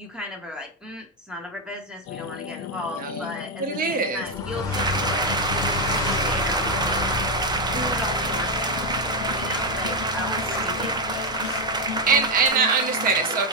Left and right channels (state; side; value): normal; both; correlation 0.05